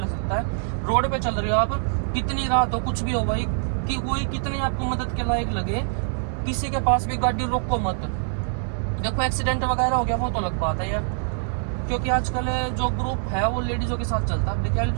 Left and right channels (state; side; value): silent; left; digital silence